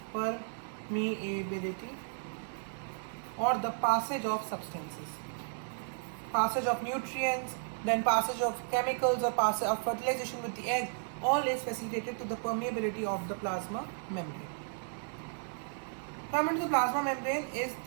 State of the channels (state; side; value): silent; left; digital silence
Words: or the passage of substances, passage of nutrients, then passage of chemicals or passage of fertilization with the egg, all is facilitated to the permeability of the plasma membrane. Coming to the plasma membrane is